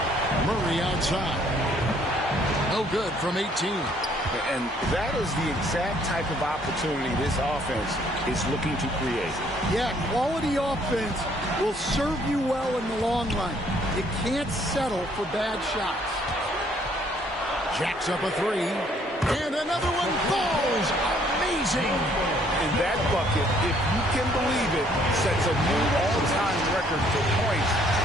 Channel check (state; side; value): normal; both; correlation 0.64